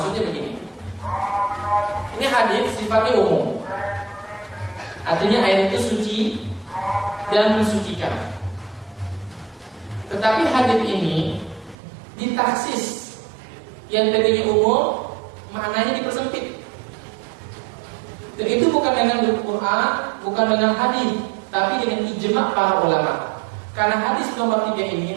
begini. Ini hadis sifatnya umum. Artinya air itu suci dan mensucikan. Tetapi hadis ini ditaksis, yang tadinya umum maknanya dipersempit. Dan itu bukan dengan Al-Quran, bukan dengan hadis, tapi dengan ijma' para ulama. Karena hadis nomor 3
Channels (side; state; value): left; drops out; at 11.8 s